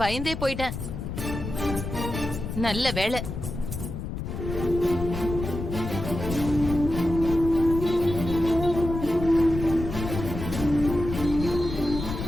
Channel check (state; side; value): noise; left; rumble, 6 dB below the sound